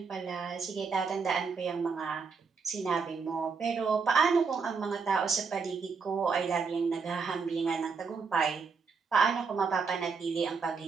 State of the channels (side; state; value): left; quieter; 5.2 dB